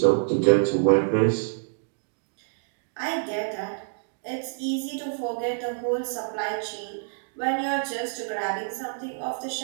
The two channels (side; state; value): left; silent; digital silence